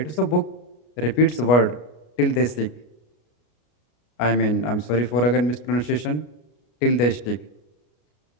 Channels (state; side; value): late; right; 33 ms